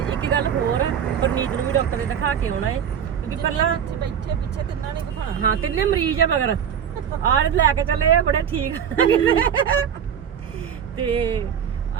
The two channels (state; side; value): quieter; left; 8.3 dB